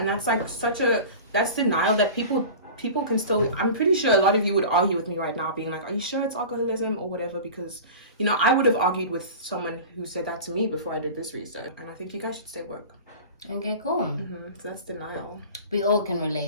that's like that's denial that people can still, I'm pretty sure a lot of you would argue with me right now being like, are you sure it's alcoholism or whatever? Because, you know, I would have argued with someone who said that to me before I did this research. And I think you guys should stay woke. Okay, cool. So that's denial. We all can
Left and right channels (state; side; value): inverted; both; correlation -0.35